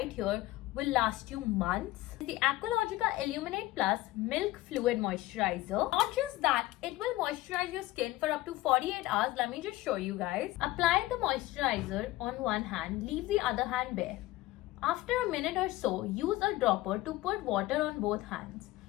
here will last you months? The Aqualogica Illuminate Plus Milk Fluid Moisturizer. Not just that, it will moisturize your skin for up to 48 hours. Let me just show you guys. Apply the moisturizer on one hand, leave the other hand bare. After a minute or so, use a dropper to put water on both hands.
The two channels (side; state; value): right; quieter; 17.6 dB